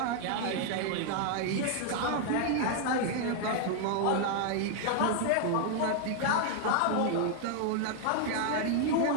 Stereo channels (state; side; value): different; both; correlation 0.00